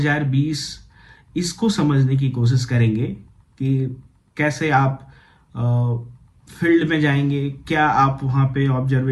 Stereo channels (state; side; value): identical; both; correlation 1.00